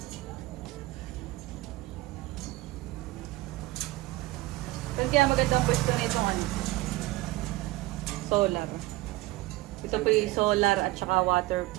Kaya maganda ang pwesto na itong ano, solar. Ito po yung solar at saka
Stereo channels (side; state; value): left; quieter; 19.3 dB